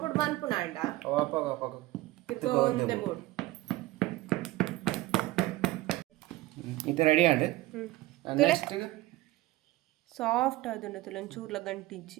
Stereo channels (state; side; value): quieter; left; 18.1 dB